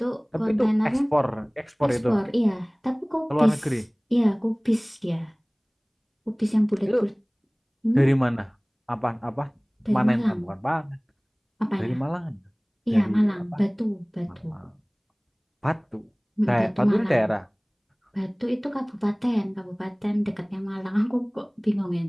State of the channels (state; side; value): identical; both; correlation 1.00